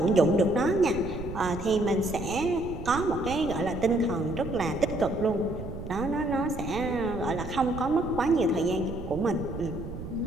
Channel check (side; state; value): right; noise; rumble, 9 dB below the sound